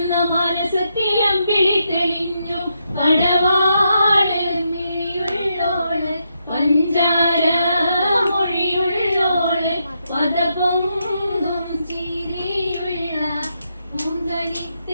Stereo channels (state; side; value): inverted; both; correlation -0.81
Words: മാനസത്തിൽ അമ്പിളി തെളിഞ്ഞു പടവാള് മിഴിയുള്ളോള് പഞ്ചാര മൊഴിയുള്ളോള് പദപൊങ്കും ചിരിയുള്ള